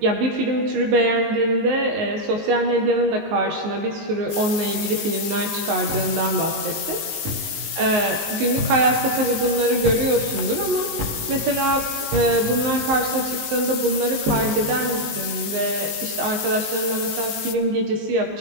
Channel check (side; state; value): left; late; 19 ms